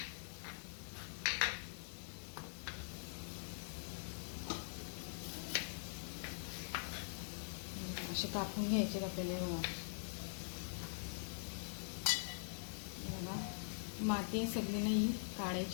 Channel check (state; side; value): silent; right; digital silence